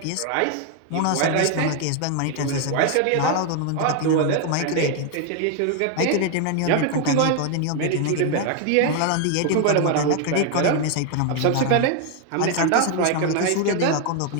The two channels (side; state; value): both; different; correlation 0.01